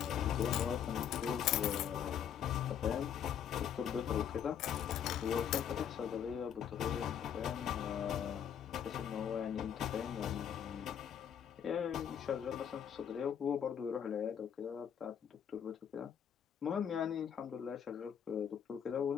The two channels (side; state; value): right; quieter; 8.7 dB